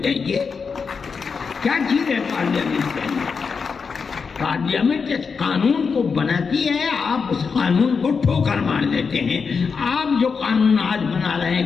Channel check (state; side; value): quieter; right; 5.5 dB